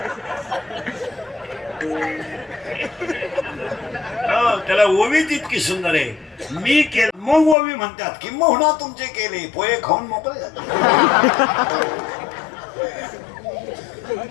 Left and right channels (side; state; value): right; drops out; at 7.6 s